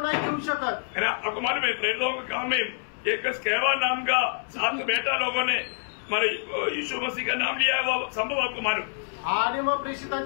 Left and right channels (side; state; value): right; silent; 60 dB below the other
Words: नाही घेऊ शकत। है ना। आपको मालूम है प्रेरितों के काम में एक स्केवा नाम का 7 बेटा लोगों ने हमारे यीशु मसीह का नाम लिया है, वो संभव आपको मालूम? आणि मग